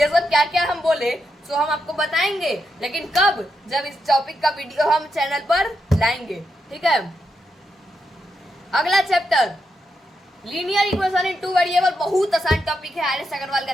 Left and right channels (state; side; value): normal; both; correlation 0.83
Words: सब क्या क्या हम बोले तो हम आपको बताएंगे, लेकिन कब, जब इस टॉपिक का वीडियो हम चैनल पर लाएंगे, ठीक है। अगला चैप्टर लीनियर इक्वेशन इन 2 वेरिएबल, बहुत आसान टॉपिक है, आर एस अग्रवाल का